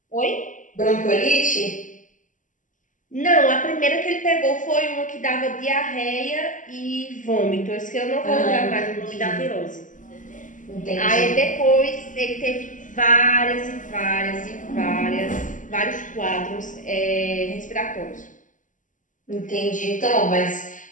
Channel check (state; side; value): late; right; 0.37 ms